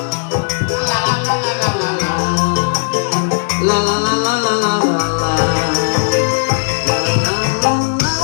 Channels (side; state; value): right; silent; digital silence